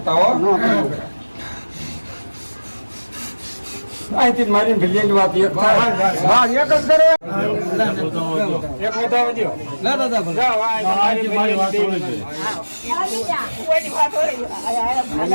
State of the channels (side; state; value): both; inverted; correlation -1.00